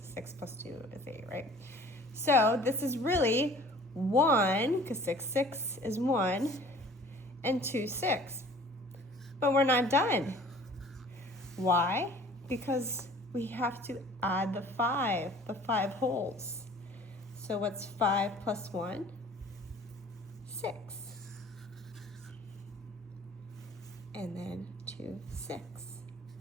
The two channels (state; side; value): normal; both; correlation 0.49